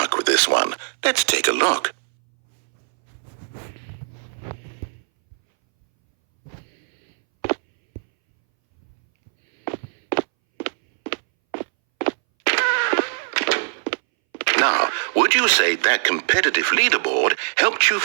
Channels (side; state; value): left; silent; 63 dB below the other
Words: with this one. Let's take a look. Now, would you say that competitive leaderboard helped you